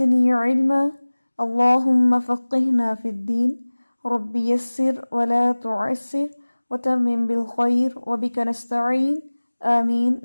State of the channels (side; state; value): both; inverted; correlation -1.00